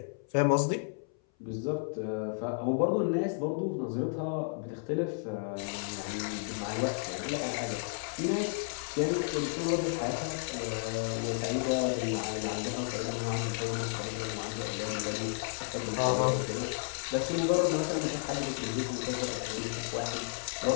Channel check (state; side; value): silent; right; 56 dB below the other